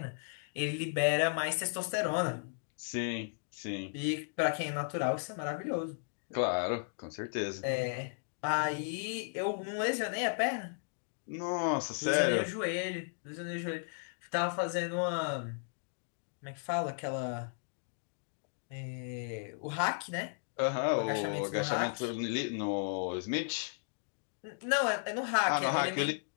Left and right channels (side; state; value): right; silent; digital silence